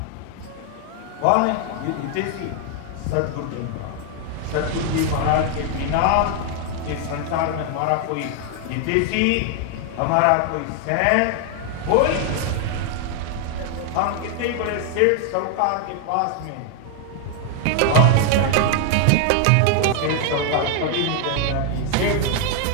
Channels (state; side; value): different; both; correlation 0.00